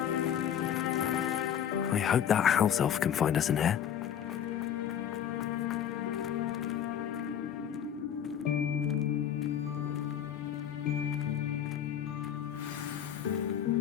I hope that house elf can find us in here.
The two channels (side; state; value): right; quieter; 9.3 dB